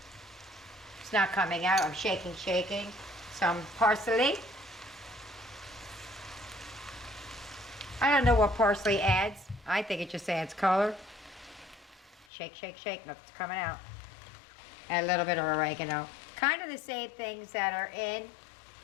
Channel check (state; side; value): drops out; right; at 12.2 s